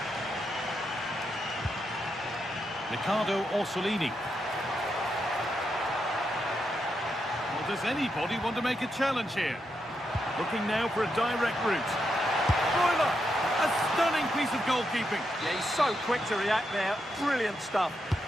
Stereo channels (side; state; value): both; normal; correlation 0.83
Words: Riccardo Orsolini. Well, does anybody want to make a challenge here? Looking now for a direct route. Broiler! A stunning piece of goalkeeping. Yeah, he's so quick to react there. Brilliant stuff.